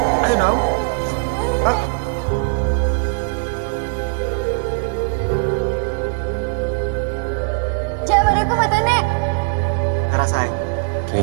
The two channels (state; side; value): silent; left; digital silence